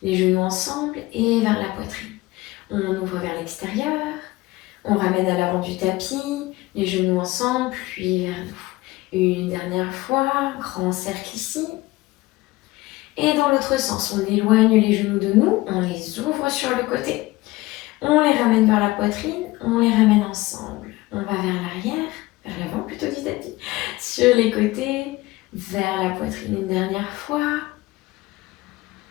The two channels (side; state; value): right; quieter; 19.7 dB